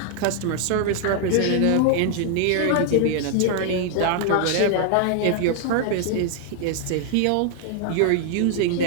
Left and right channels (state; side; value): different; both; correlation 0.00